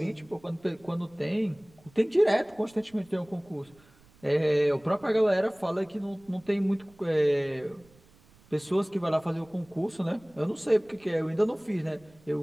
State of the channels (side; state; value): right; noise; rumble, 28 dB below the sound